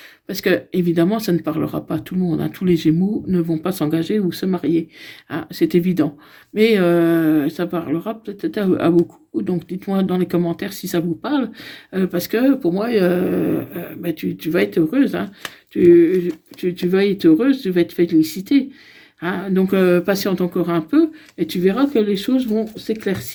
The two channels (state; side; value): identical; both; correlation 1.00